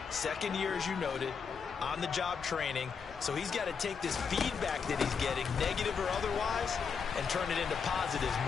2nd year, as you noted, on-the-job training, so he's got to take this feedback that he's getting, negative or otherwise, and turn it into positives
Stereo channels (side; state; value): right; quieter; 6.1 dB